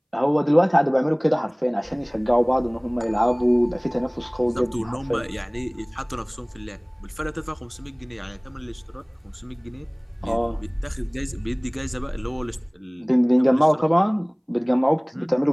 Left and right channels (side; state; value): both; identical; correlation 1.00